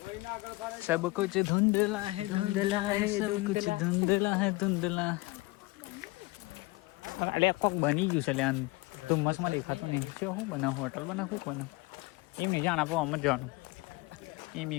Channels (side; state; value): right; quieter; 22.8 dB